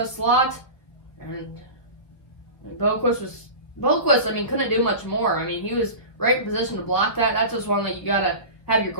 slot. And Boquist, couldn't do much more. I mean, he was right in position to block that. That's just one that you gotta have your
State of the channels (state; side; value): late; right; 1.5 ms